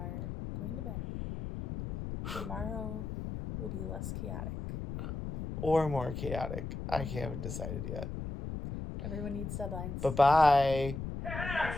going to bed. Tomorrow will be less chaotic. Or more chaotic. I haven't decided yet. Everyone needs deadlines. Bye-bye.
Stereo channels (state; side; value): noise; left; rumble, 6 dB below the sound